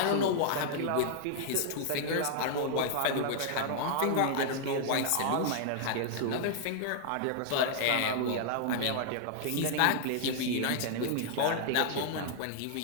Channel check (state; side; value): different; both; correlation -0.01